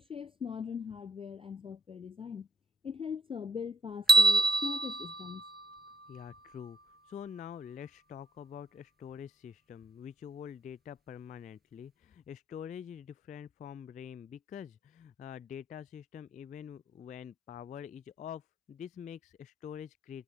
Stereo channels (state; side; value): normal; both; correlation 0.60